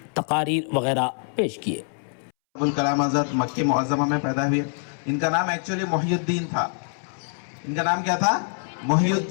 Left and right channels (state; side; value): silent; right; 62 dB below the other